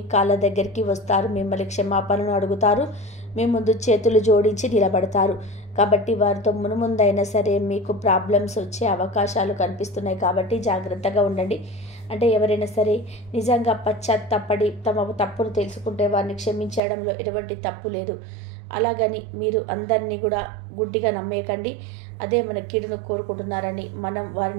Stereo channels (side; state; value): left; drops out; at 16.8 s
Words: కాళ్ళ దగ్గరికి వస్తారు. మిమ్మల్ని క్షమాపణను అడుగుతారు. మీ ముందు చేతులు జోడించి నిలబడతారు. కాబట్టి వారితో మునుముందైనా సరే మీకు ప్రాబ్లమ్స్ వచ్చే అవకాశాలు కనిపిస్తున్నాయి. కాబట్టి జాగ్రత్తగా ఉండండి. అంటే ఎవరైనా సరే నిజంగా పశ్చాత్తాపడి తమ తప్పును తెలుసుకుంటే వారిని క్షమించడంలో ఎటువంటి తప్పు లేదు. అలాగని మీరు అందరినీ కూడా గుడ్డిగా నమ్మేయకండి. అదే మన కీడును కోరుకుంటున్నారని మనం